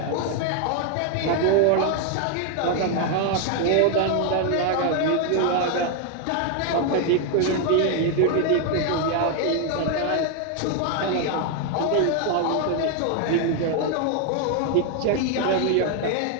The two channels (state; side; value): different; both; correlation 0.00